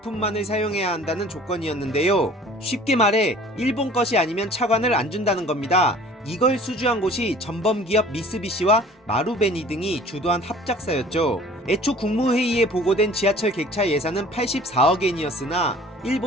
사용해야 한다는 조건이었는데요. 쉽게 말해 일본 것이 아니면 차관을 안 준다는 겁니다. 이걸 수주한 곳이 전범기업 미쓰비시와 마루베니 등이 주도한 합작사였죠. 애초 국무회의에 보고된 지하철 객차 예산은 84억엔이었으나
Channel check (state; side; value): normal; both; correlation 0.49